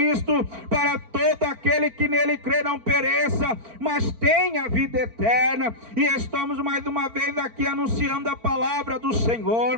para todo aquele que nele crê não pereça, mas tenha vida eterna. E estamos mais uma vez aqui anunciando a palavra do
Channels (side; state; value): left; late; 4.5 ms